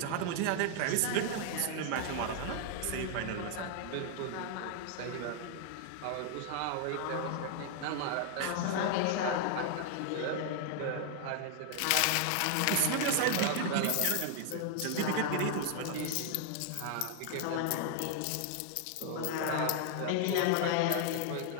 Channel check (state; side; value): different; both; correlation 0.00